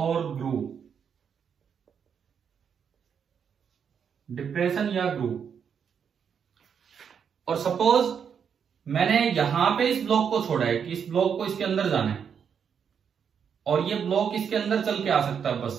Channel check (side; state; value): left; quieter; 7.3 dB